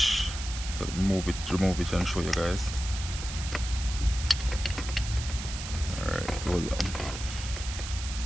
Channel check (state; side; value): noise; right; hiss, 9 dB below the sound